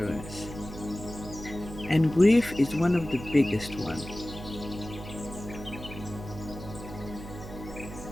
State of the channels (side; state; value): right; noise; hum, 12 dB below the sound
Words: and grief is one of the biggest ones.